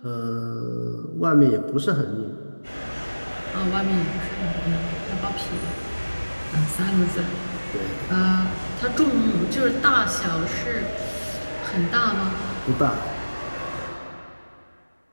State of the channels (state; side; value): inverted; both; correlation -1.00